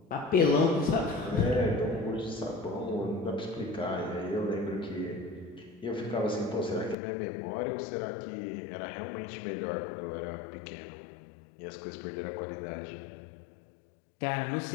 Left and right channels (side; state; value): right; drops out; at 7.0 s